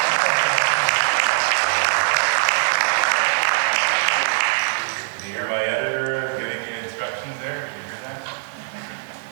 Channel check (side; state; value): left; silent; digital silence